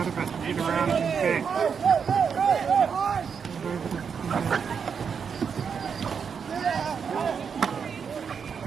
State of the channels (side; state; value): left; quieter; 6.5 dB